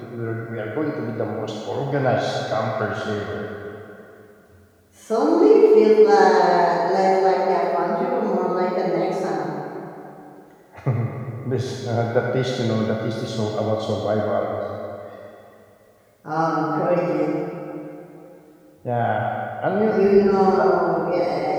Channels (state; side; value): identical; both; correlation 1.00